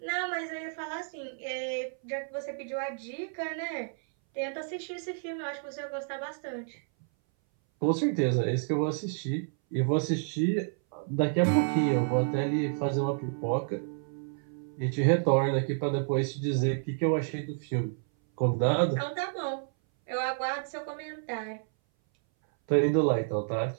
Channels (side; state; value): left; silent; 58 dB below the other